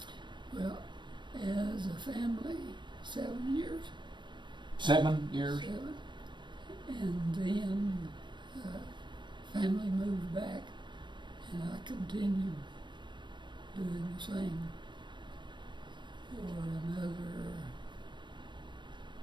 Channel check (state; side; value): late; left; 0.22 ms